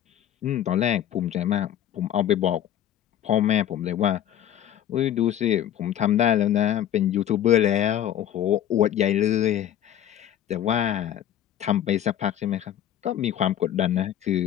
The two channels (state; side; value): quieter; right; 10.9 dB